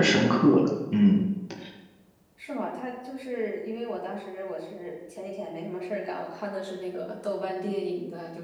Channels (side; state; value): both; identical; correlation 1.00